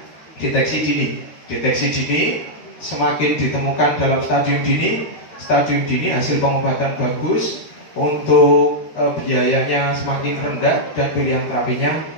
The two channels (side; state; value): right; late; 13 ms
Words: deteksi dini. Deteksi dini semakin ditemukan dalam stadium dini hasil pengobatan bagus, untuk biayanya semakin rendah dan pilihan terapinya